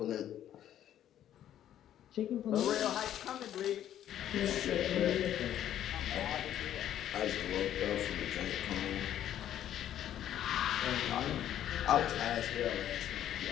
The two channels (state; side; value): quieter; right; 11.3 dB